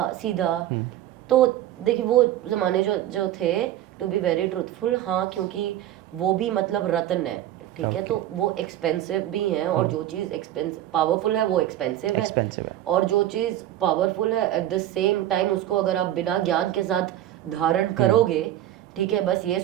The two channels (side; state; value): left; quieter; 13.0 dB